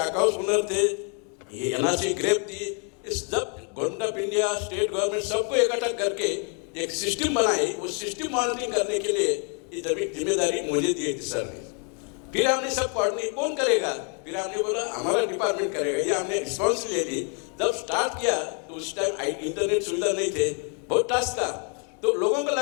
हाउस ओनर थे, ये एनआरसी ग्रेप थी, इस सब government of India, state government सबको इकट्ठा करके एक सिस्टम बनाई। उस सिस्टम मॉनिटरिंग करने के लिए ये जिम्मेदारी मुझे दी थी सर ने। फिर हमने सब कोऑर्डिनेट कौन करेगा, फिर हमने बोला हमारा डिपार्टमेंट करेगा, ये हमने रिस्पॉन्स ले ली। जब स्टार्ट किया तो उस टाइम इंटरनेट सुविधा नहीं थे, बहुत टास्क था, तो लोगों को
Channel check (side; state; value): right; quieter; 37.9 dB